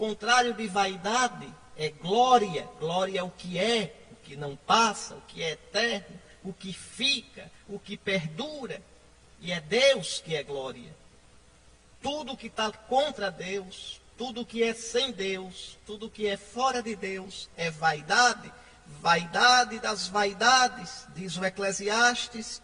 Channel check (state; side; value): identical; both; correlation 1.00